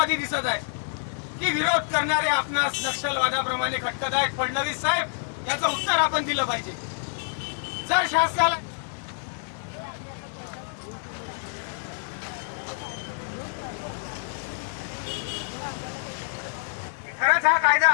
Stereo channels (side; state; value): right; silent; 60 dB below the other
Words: दिसत आहेत की विरोध करणारे आपणास नक्षलवादाप्रमाणे खटकत आहेत? फडणवीस साहेब, याचं उत्तर आपण दिलं पाहिजे. जर शासनाला खरंच हा